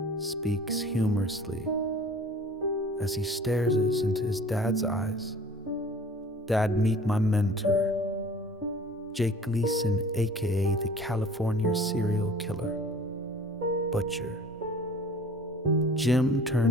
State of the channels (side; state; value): both; normal; correlation 0.47